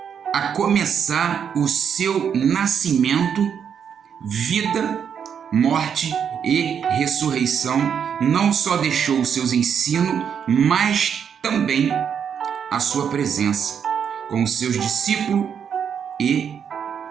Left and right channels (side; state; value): left; quieter; 7.7 dB